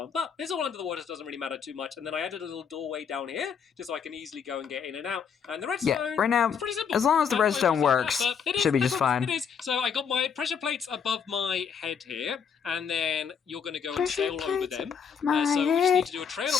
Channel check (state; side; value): quieter; right; 6.9 dB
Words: but it's all under the water, so it doesn't really matter too much. And then I added a little doorway down here, just so I can easily go and get in and out. And the redstone, right now, is pretty simple. as long as the redstone works, should be just fine. It is. So I got my pressure plates above my head here, and then you're going to go and sail over them. So we just need to do a trail